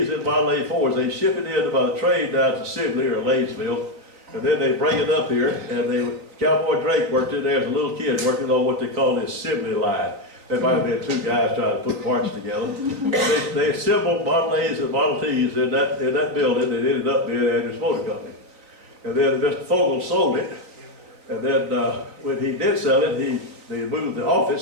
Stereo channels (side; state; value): left; late; 3.9 ms